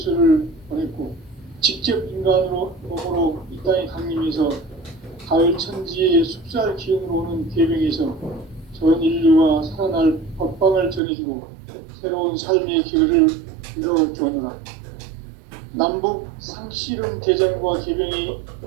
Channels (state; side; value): drops out; left; at 11.0 s